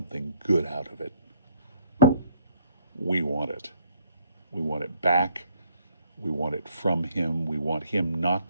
good out of it, we want it. We want it back. We want it from him. We want him not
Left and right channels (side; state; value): both; inverted; correlation -0.65